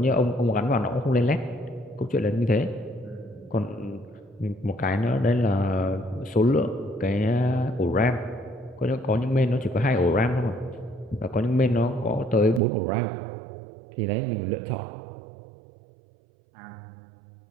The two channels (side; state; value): left; drops out; at 12.6 s